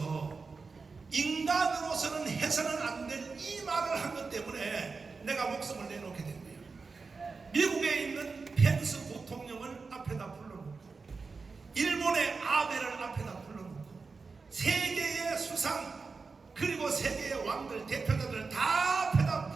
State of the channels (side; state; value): left; quieter; 4.5 dB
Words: 인간으로서는 해서는 안 될 이 말을 한 것 때문에 내가 목숨을 내놓게 된 거예요. 미국에 있는 펜스 부통령을 앞에다 불러놓고 일본의 아베를 앞에다 불러놓고 세계의 수상 그리고 세계의 왕들 대표자들을 다 앞에다